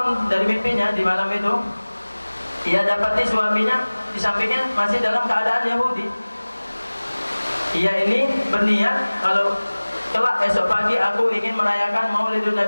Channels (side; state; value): both; inverted; correlation -1.00